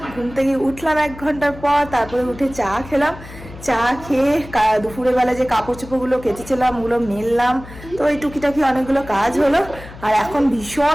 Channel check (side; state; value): left; noise; hum, 16 dB below the sound